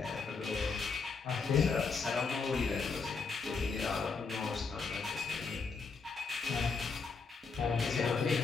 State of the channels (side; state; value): right; quieter; 4.8 dB